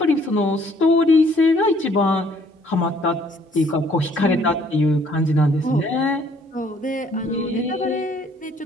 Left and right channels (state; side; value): normal; both; correlation 0.62